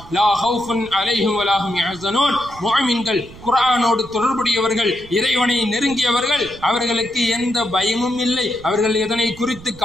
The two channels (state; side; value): noise; right; rumble, 19 dB below the sound